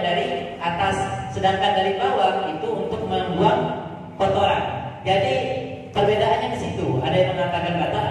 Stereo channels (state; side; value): identical; both; correlation 1.00